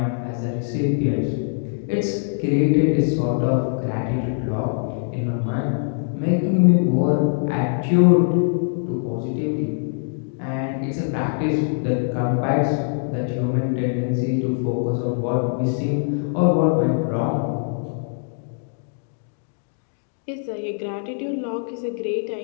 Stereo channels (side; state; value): right; silent; 64 dB below the other